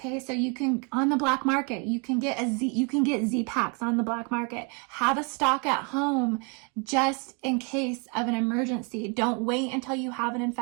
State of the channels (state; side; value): quieter; left; 33.5 dB